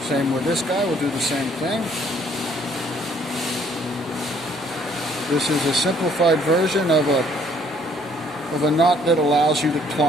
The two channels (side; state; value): both; normal; correlation 0.62